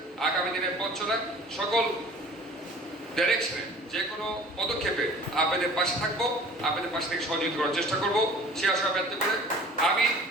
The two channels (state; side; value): normal; both; correlation 0.46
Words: আগামী দিনের পথ চলা সকল ডাইরেকশনে যে কোনো পদক্ষেপে আপনাদের পাশে থাকবো, আপনাদের পাশে থেকে সহযোগিতা করার চেষ্টা করবো। সে আশা ব্যক্ত করে আমি